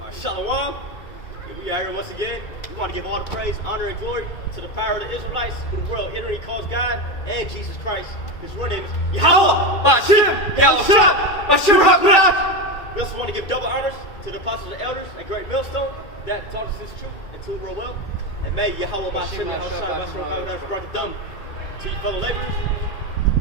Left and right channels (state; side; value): late; right; 2.2 ms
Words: right. Shalom. We are here once again. We want to give all the praise, honor, and glory to the power of the Israelites, who the world ignorantly calls God, and Jesus Christ. His real name is Yahweh Bashim Yahushua Bashim HaKadosh. We also want to give double honors to the apostles and elders at Great Millstone that taught us this truth and to real well. And may Yahweh Bashim Yahushua Bashim HaKadosh brought the dumb to you fellow laborers,